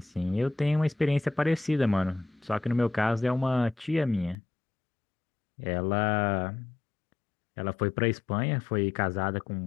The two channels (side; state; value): right; drops out; at 4.4 s